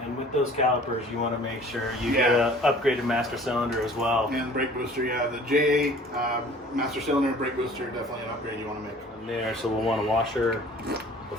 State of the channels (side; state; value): both; normal; correlation 0.49